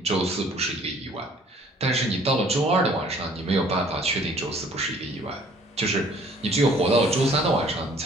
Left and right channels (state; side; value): normal; both; correlation 0.56